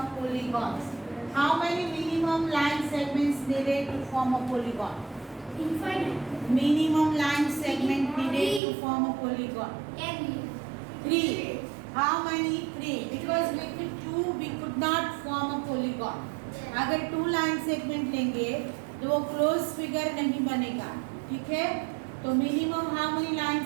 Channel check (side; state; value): left; drops out; at 8.6 s